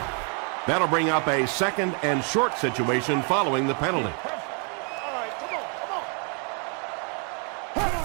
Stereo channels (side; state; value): left; quieter; 38.4 dB